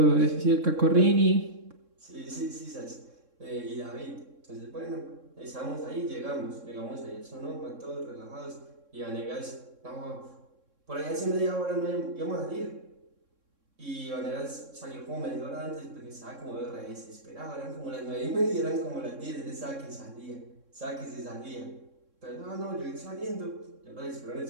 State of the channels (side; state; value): left; late; 3.6 ms